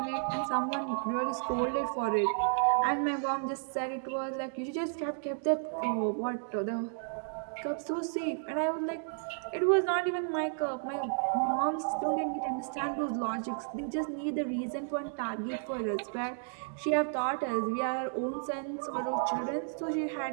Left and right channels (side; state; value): left; silent; digital silence